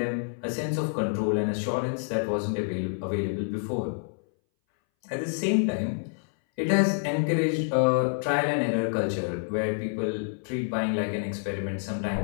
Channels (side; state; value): right; silent; 60 dB below the other